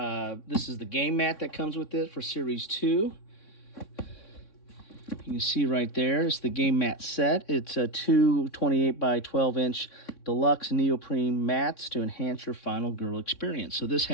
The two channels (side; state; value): right; late; 3.6 ms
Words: is the game mat that comes with it for Series 2. You can see right there, it's the game mat set. It's a 2 28 by 12 inch deluxe neoprene mats to enhance your Final Girl experience. So this